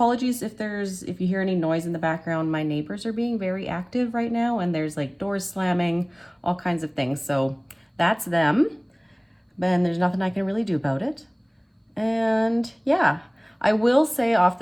if you hear any noise in the background. My neighbors are being very active right now, and there's like doors slamming, all kinds of things. So that's them, and there's nothing I can really do about it. And yeah, I will say off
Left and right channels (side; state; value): both; identical; correlation 1.00